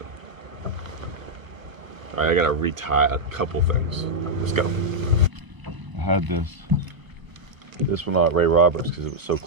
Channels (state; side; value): late; left; 1.1 ms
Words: All right, I gotta retie a couple things. Let's go. I had this one at Ray Roberts because it was so